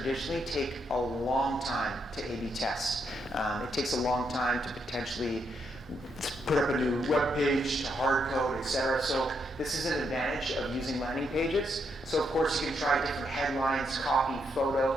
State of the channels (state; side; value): normal; both; correlation 0.78